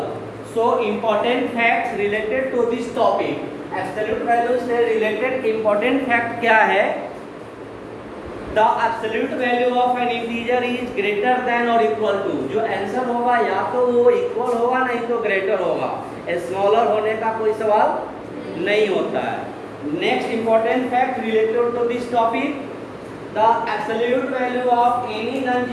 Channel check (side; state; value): both; identical; correlation 1.00